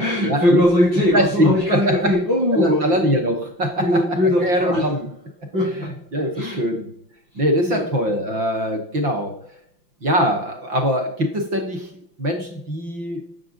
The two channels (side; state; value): left; late; 5.8 ms